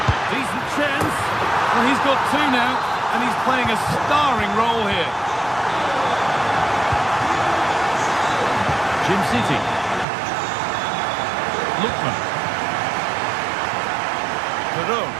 Decent chance. Well, he's got two now, and he's playing a starring role here. Jim City. Lookman. Perot.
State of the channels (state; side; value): drops out; left; at 10.1 s